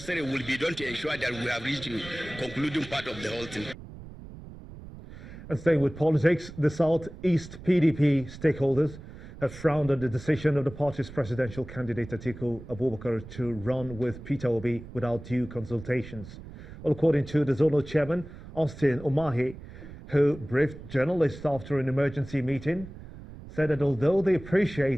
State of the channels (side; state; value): right; noise; rumble, 15 dB below the sound